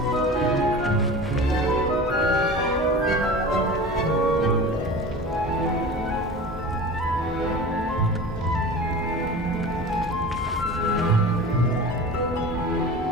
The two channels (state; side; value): normal; both; correlation 0.35